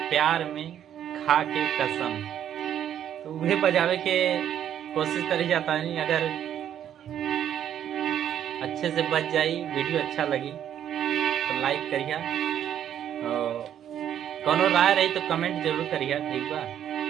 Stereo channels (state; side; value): quieter; left; 10.1 dB